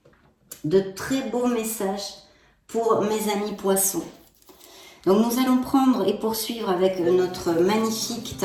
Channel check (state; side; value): identical; both; correlation 1.00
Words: De très beaux messages pour mes amis poissons. Donc nous allons prendre et poursuivre avec notre magnifique